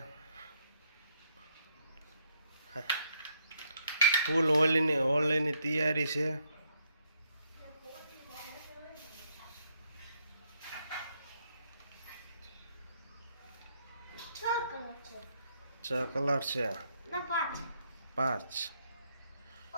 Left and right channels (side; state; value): both; inverted; correlation -0.73